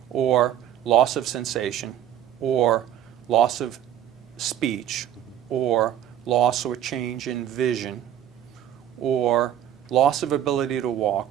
or loss of sensation, or loss of speech, or loss or change in vision, or loss of ability to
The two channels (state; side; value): quieter; left; 10.6 dB